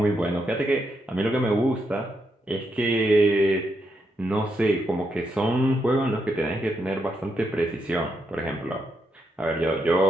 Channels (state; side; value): normal; both; correlation 0.81